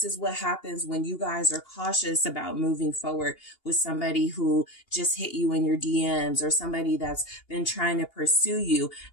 is what happens when you guys are cautious about moving forward with somebody who just hit you in your DMs, or somebody that's been trying to pursue you.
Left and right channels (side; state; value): right; late; 2.8 ms